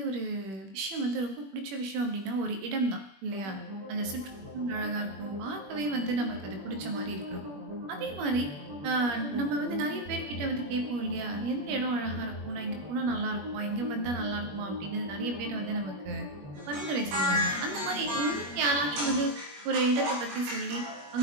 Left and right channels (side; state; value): left; late; 21 ms